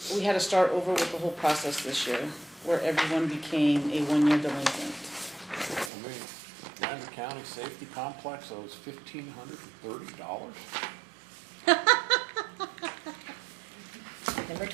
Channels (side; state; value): left; drops out; at 5.9 s